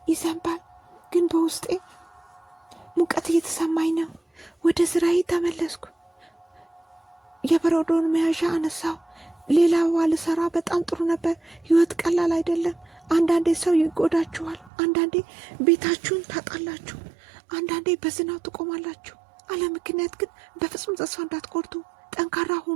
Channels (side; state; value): left; drops out; at 14.7 s